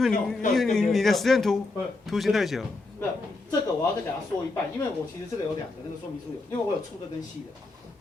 为你的实验图形太小。不是，这个我要再给他说一半，因为我其实这个有2个，那个说明书有，因为我有粗的跟细的，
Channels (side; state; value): right; quieter; 3.4 dB